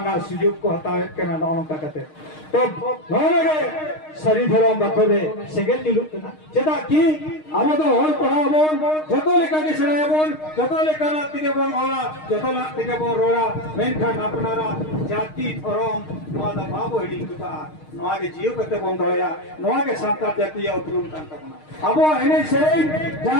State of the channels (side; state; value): right; late; 6.5 ms